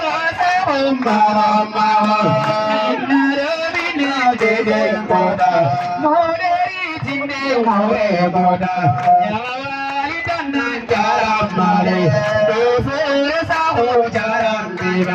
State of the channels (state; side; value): identical; both; correlation 1.00